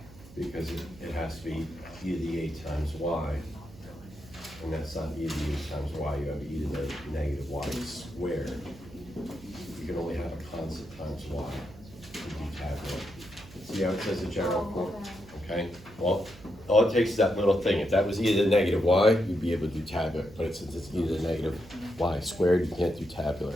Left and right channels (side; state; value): right; noise; hum, 20 dB below the sound